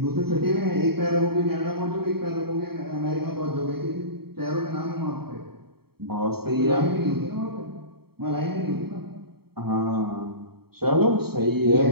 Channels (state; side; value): late; left; 0.95 ms